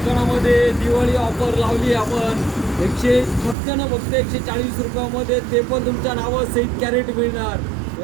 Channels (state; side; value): drops out; left; at 3.6 s